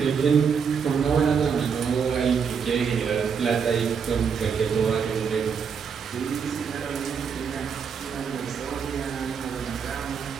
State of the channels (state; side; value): quieter; left; 6.5 dB